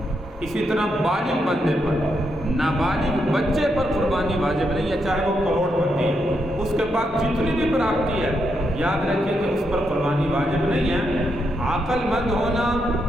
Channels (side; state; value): both; normal; correlation 0.81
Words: اسی طرح بالغ بندے پر، نابالغ بچے پر قربانی واجب نہیں ہے، چاہے وہ کروڑ پتی ہے، اس کے پاس جتنی بھی پراپتی ہے، یاد رکھیں کہ اس پر قربانی واجب نہیں ہے۔ عقل مند ہونا،